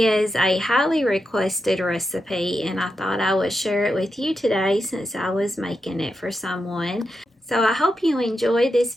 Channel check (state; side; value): normal; both; correlation 0.87